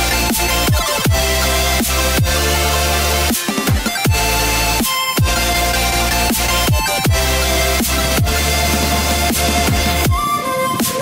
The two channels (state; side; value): identical; both; correlation 1.00